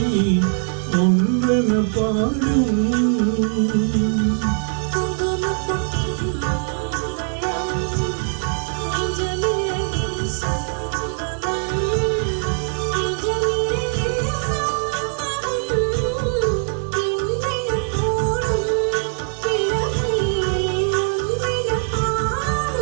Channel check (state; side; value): silent; left; 61 dB below the other